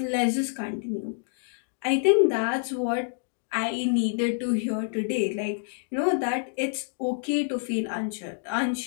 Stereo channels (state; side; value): silent; right; digital silence